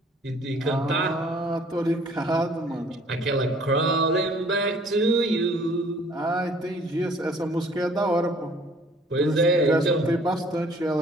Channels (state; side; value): normal; both; correlation 0.56